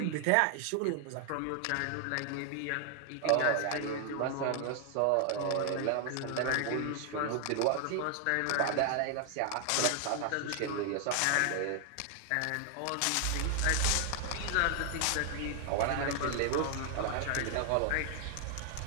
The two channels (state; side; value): different; both; correlation 0.00